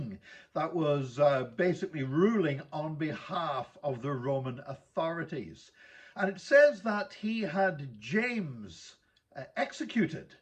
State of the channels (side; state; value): both; identical; correlation 1.00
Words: that was basically ruling on behalf of the Roman authorities. And it says that he had James executed,